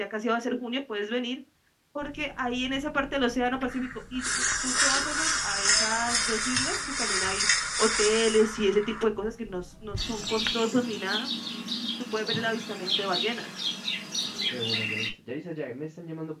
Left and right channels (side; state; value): both; identical; correlation 1.00